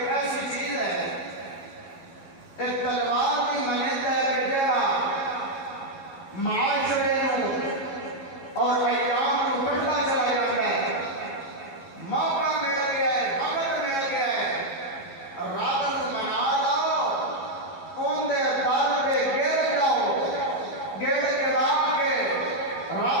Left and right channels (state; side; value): late; right; 11 ms